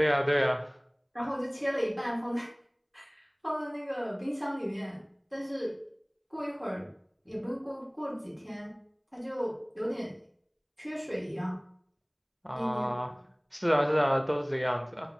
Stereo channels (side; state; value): both; identical; correlation 1.00